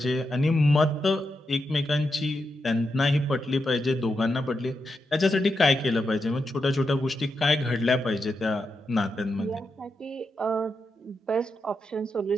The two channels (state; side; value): normal; both; correlation 0.86